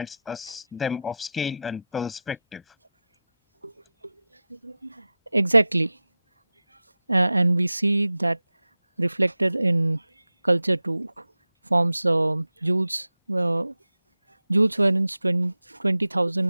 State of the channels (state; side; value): inverted; both; correlation -0.93